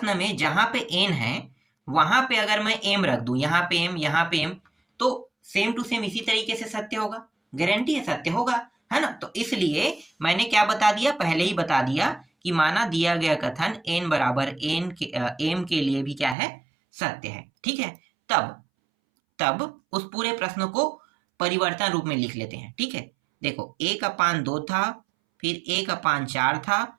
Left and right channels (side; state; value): left; drops out; at 16.4 s